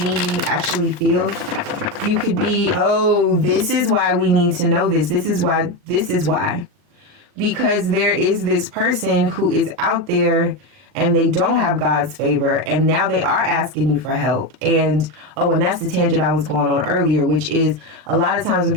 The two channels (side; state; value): left; late; 39 ms